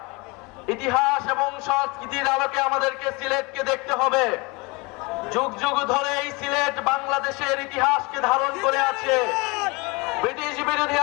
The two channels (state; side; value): quieter; right; 26.8 dB